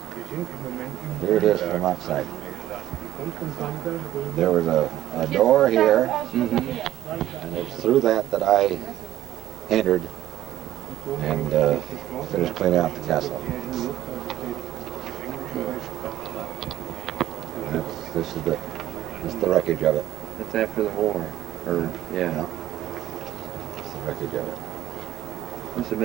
it is from outside. There was a door here, and it's through that I entered and finished cleaning out the castle. This is the wreckage of it. That's after the war. Or, yeah. Yeah. It's the wreckage of it. This has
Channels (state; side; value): quieter; left; 13.2 dB